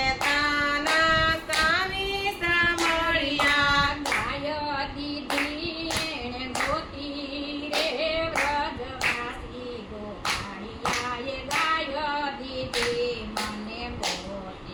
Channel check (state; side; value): identical; both; correlation 1.00